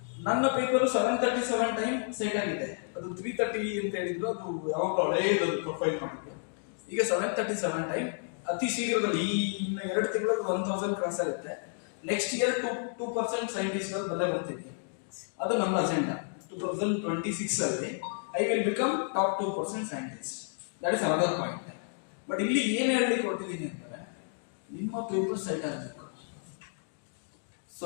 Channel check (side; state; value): right; silent; 57 dB below the other